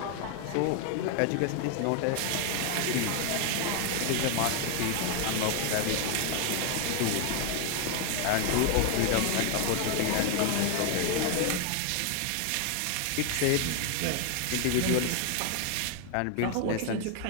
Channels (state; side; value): different; both; correlation 0.01